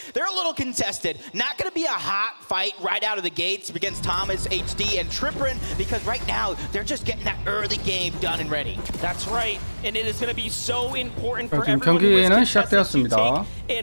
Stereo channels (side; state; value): both; inverted; correlation -1.00